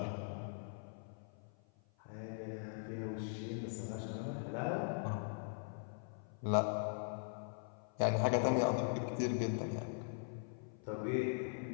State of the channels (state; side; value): silent; right; 50 dB below the other